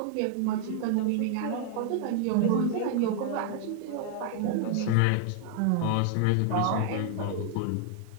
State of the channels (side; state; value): both; different; correlation 0.00